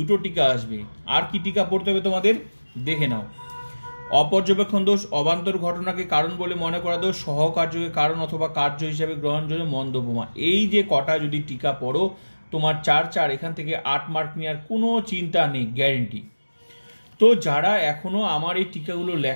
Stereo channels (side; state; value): both; inverted; correlation -1.00